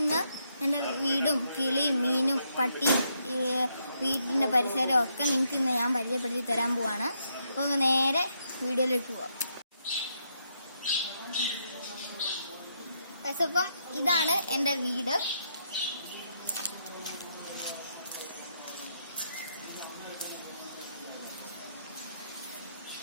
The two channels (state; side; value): inverted; both; correlation -0.77